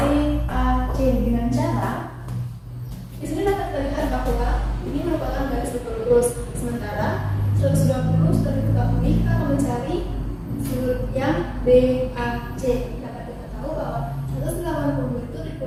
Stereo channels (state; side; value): identical; both; correlation 1.00